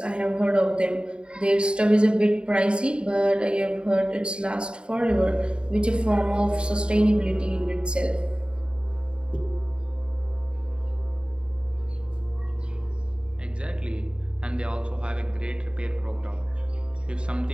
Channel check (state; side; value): late; left; 0.053 ms